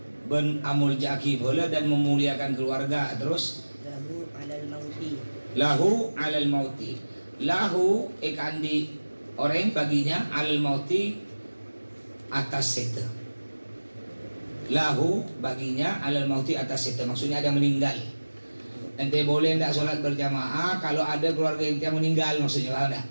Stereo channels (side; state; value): both; inverted; correlation -1.00